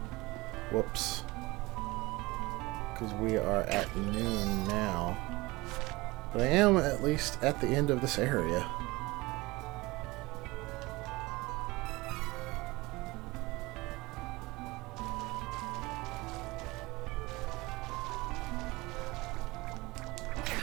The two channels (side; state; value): left; quieter; 21.9 dB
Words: Whoops. Because we are at noon now. But I am at least at the end of this area.